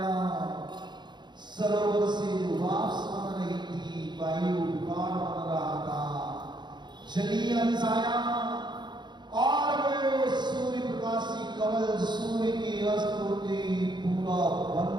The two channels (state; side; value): late; left; 0.21 ms